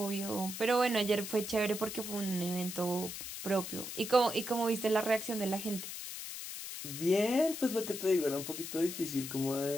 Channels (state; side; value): noise; left; hiss, 7 dB below the sound